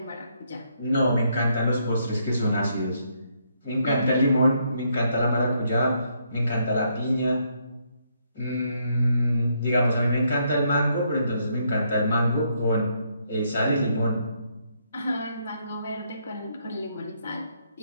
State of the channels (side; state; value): both; inverted; correlation -0.74